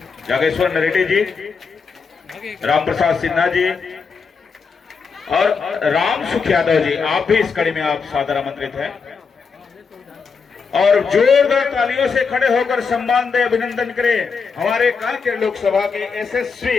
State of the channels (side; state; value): right; quieter; 5.4 dB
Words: जागेश्वर नरेटी जी, राम प्रसाद सिन्हा जी और राम सुख यादव जी, आप भी इस कड़ी में आप सादर आमंत्रित हैं। और जोरदार तालियों से खड़े होकर सम्मान दे, अभिनंदन करें हमारे कांकेर लोकसभा के यशस्वी